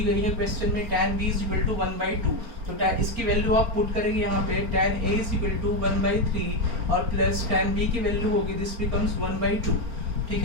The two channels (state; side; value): late; left; 4.4 ms